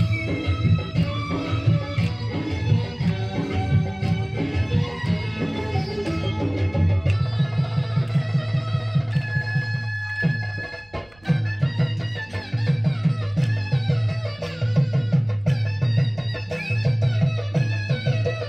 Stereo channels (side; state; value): right; noise; rumble, 29 dB below the sound